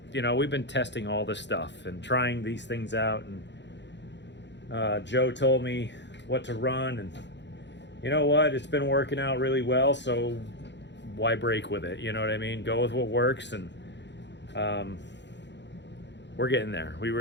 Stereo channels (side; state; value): right; late; 0.52 ms